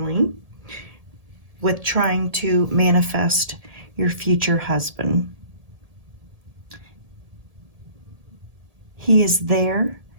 with trying to manifest your future husband. He is there.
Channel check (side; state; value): left; late; 1.7 ms